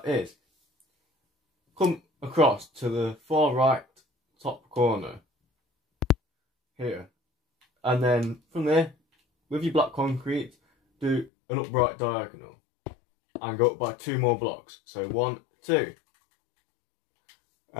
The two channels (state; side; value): drops out; right; at 11.3 s